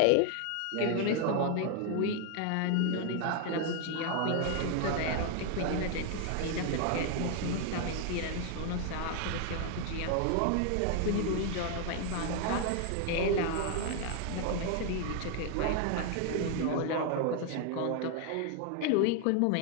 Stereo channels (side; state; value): both; different; correlation 0.00